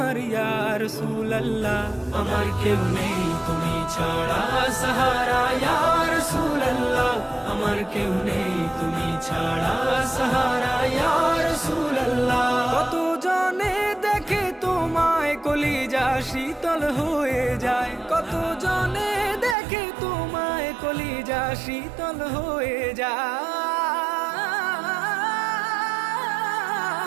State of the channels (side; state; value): left; drops out; at 19.6 s